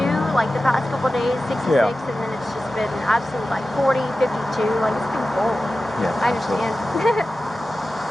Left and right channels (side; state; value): both; normal; correlation 0.94